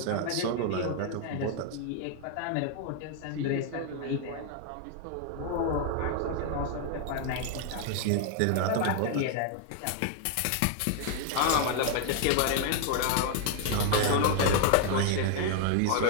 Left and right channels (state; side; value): different; both; correlation 0.00